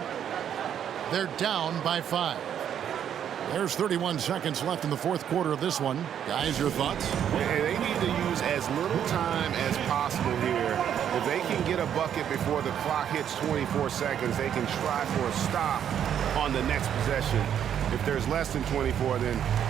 They're down by 5. There's 31 seconds left in the fourth quarter of this one. Guys, your thoughts? They need to use as little time as possible here. If they can get a bucket before the clock hits 24 seconds, they can try for a stop on the next possession. If there's less than 24, then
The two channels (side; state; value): left; quieter; 9.3 dB